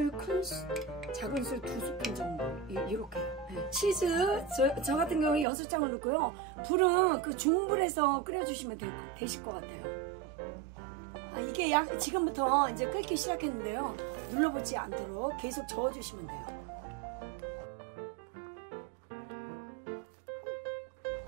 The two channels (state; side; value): drops out; left; at 5.5 s